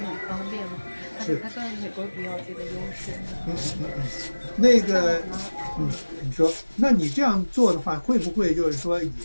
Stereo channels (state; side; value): inverted; both; correlation -1.00